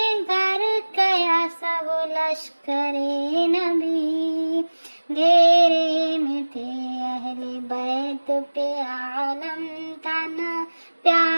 گھر گیا سب لشکر نبی، گھیرے میں تھے اہل بیت پہ عالم تنا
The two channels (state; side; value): inverted; both; correlation -1.00